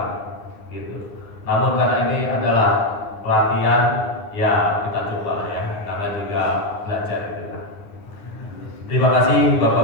Gitu. Namun karena ini adalah pelatihan, ya kita coba ya. Namanya juga belajar itu. Terima kasih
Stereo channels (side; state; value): right; late; 9.8 ms